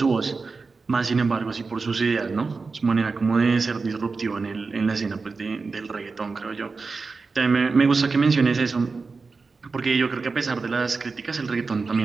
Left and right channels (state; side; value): quieter; left; 4.3 dB